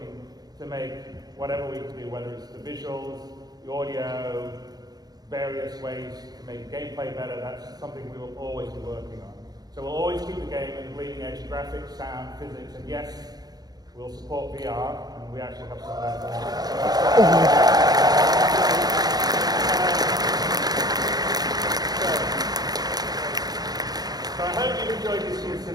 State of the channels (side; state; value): left; late; 0.19 ms